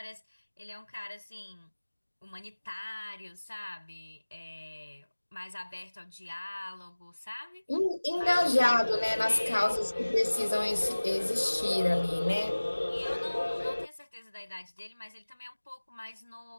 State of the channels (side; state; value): both; inverted; correlation -1.00